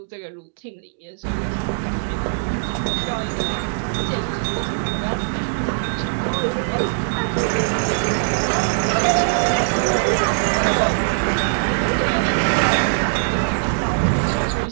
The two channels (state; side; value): silent; left; digital silence